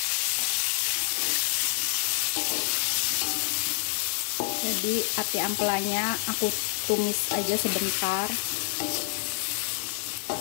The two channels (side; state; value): right; silent; digital silence